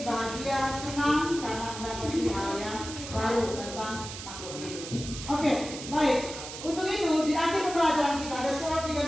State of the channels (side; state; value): right; noise; hiss, 10 dB below the sound